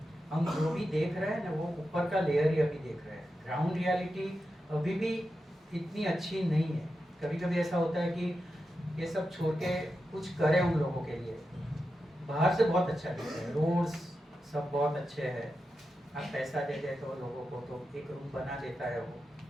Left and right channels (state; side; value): normal; both; correlation 0.89